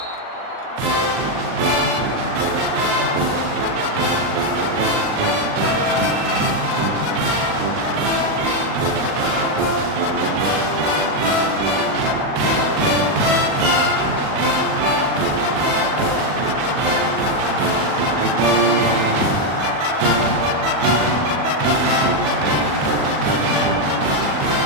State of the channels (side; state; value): left; late; 39 ms